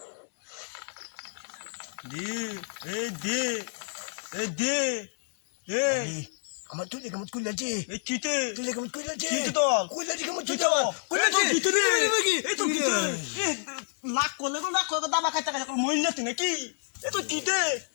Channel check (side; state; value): right; silent; 59 dB below the other